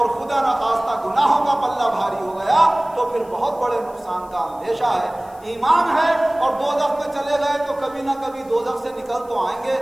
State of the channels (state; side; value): noise; left; hiss, 27 dB below the sound